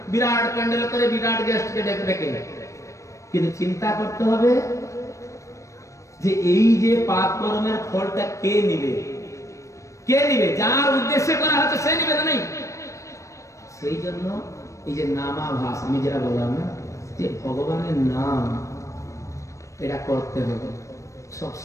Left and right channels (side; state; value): right; late; 0.15 ms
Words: বিরাট প্যান্ডেল করে বিরাট গেস্টকে ডেকে ডেকে। কিন্তু চিন্তা করতে হবে যে এই যে পাপ কর্মের ফলটা কে নিবে? কে নিবে? যার উদ্দেশ্যে করা হচ্ছে সে নিবে না? নেই। সেই জন্য এই যে নামাভাস, আমি যেটা বললাম না, যে ভগবানের নাম এটা করতে হবে